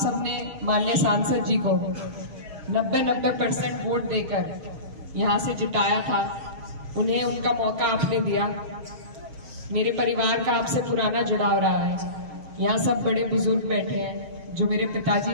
माननीय सांसद जी को 90% वोट देकर यहाँ से जिताया था। उन्हें उनका मौका आपने दिया। मेरे परिवार का आपसे पुराना जुड़ाव रहा है। यहाँ सब बड़े बुजुर्ग बैठे हैं जो मेरे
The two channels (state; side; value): late; left; 6.4 ms